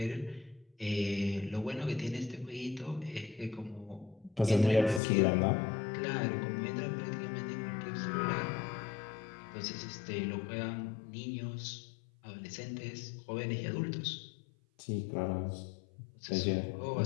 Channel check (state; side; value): drops out; right; at 5.0 s